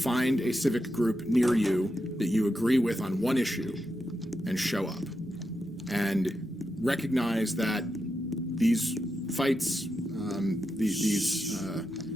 a civic group near you that you agree with on one issue and show up. And recognize that these fights, the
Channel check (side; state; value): both; normal; correlation 0.87